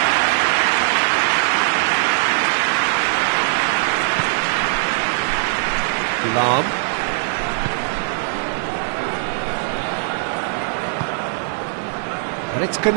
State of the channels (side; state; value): left; silent; digital silence